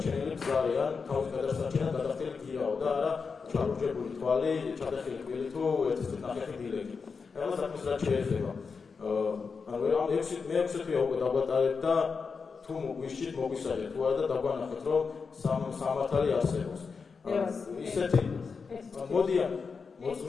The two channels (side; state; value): right; quieter; 5.2 dB